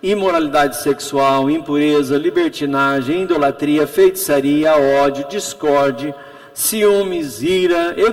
imoralidade sexual, impureza, libertinagem, idolatria, feitiçaria, ódio, discórdia, ciúmes, ira,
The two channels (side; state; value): both; identical; correlation 1.00